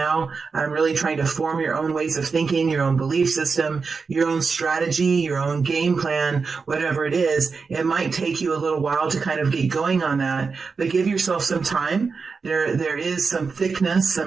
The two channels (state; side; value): quieter; left; 4.9 dB